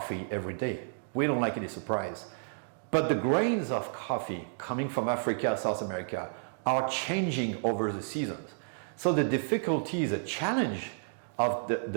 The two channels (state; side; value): silent; left; digital silence